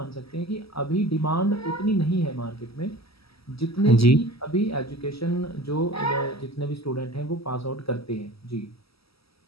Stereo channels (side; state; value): right; late; 0.76 ms